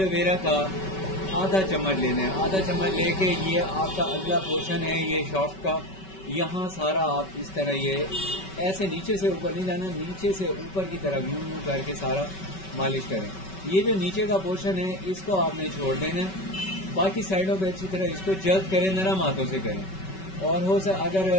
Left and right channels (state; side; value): late; right; 5.3 ms